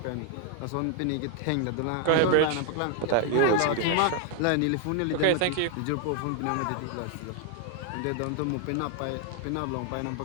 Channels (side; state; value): both; different; correlation 0.00